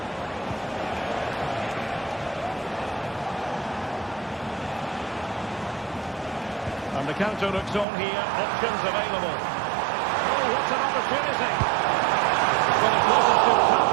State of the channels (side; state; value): left; drops out; at 7.9 s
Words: And the counter looks on here. Options available. Oh, what an opportunity. Well, it wasn't too